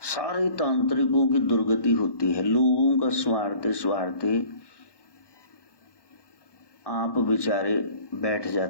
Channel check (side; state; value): right; late; 1.1 ms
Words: सारे तांत्रिकों की दुर्गति होती है, लोगों का स्वार्थे स्वार्थे आप बेचारे बैठ